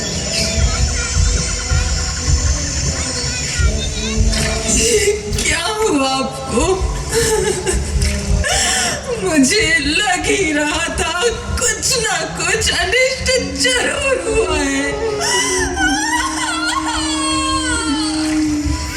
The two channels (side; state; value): both; identical; correlation 1.00